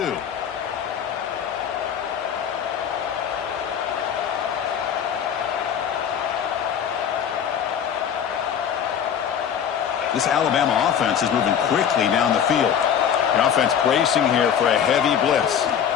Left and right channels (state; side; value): quieter; right; 8.4 dB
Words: This Alabama offense is moving quickly down the field. The offense bracing here for a heavy blitz.